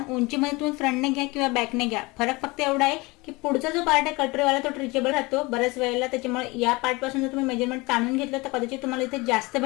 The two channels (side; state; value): right; quieter; 23.9 dB